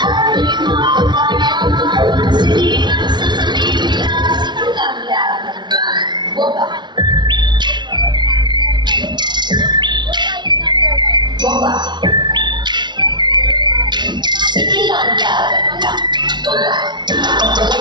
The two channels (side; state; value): left; late; 0.21 ms